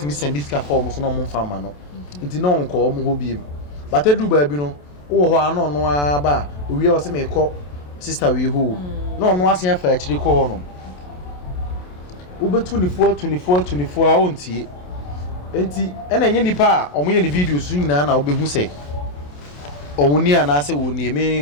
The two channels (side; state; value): right; late; 28 ms